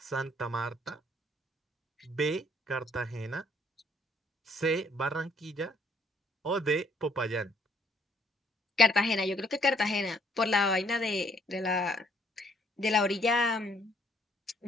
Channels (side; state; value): both; normal; correlation 0.65